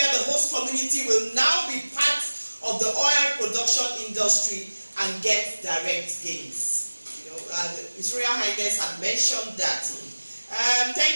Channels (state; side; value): inverted; both; correlation -1.00